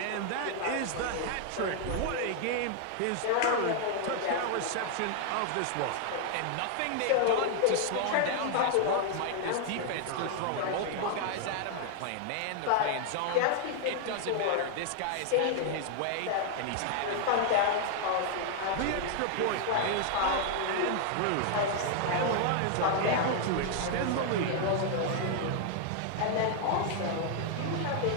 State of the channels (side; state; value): both; different; correlation 0.00